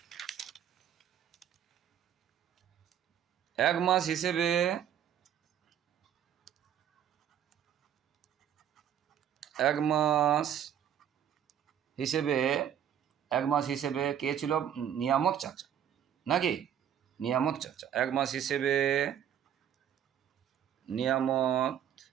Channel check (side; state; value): left; quieter; 9.6 dB